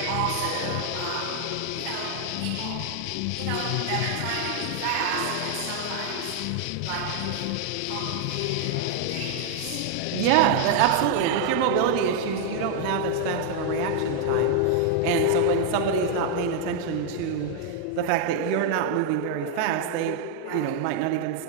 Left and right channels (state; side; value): different; both; correlation 0.00